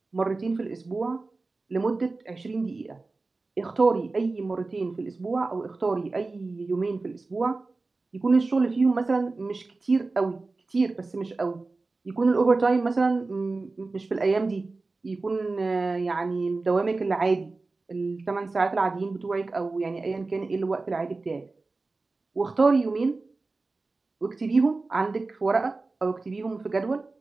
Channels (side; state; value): left; quieter; 3.6 dB